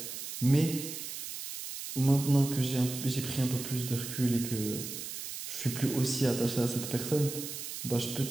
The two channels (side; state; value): right; noise; hiss, 7 dB below the sound